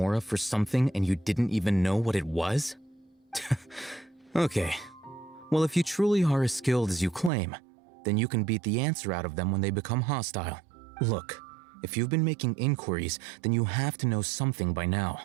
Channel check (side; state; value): left; drops out; at 7.3 s